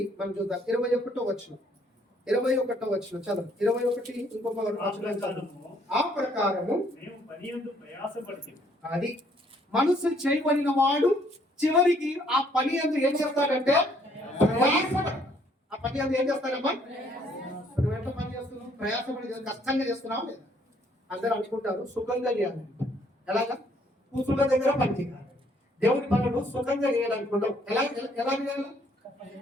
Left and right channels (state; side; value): normal; both; correlation 0.65